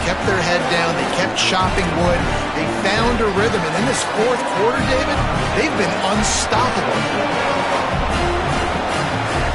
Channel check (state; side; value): identical; both; correlation 1.00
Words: kept their head down. They kept chopping wood. They found a rhythm. And in this fourth quarter, David, they've been unstoppable.